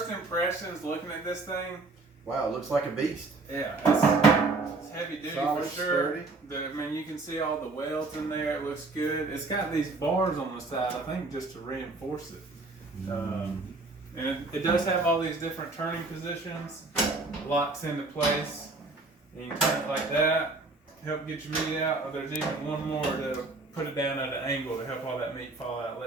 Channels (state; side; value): quieter; left; 3.5 dB